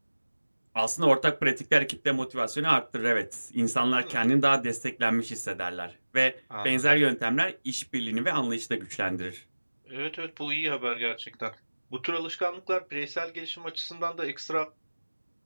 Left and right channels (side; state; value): both; inverted; correlation -1.00